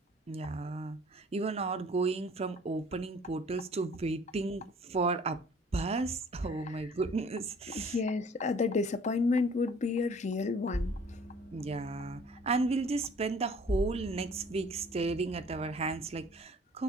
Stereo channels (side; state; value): both; normal; correlation 0.52